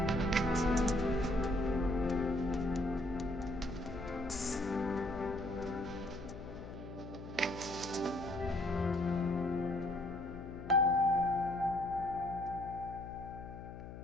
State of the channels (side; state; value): left; noise; hum, 11 dB below the sound